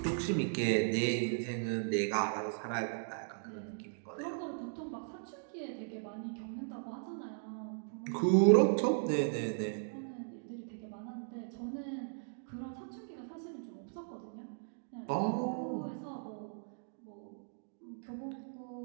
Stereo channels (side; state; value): left; silent; digital silence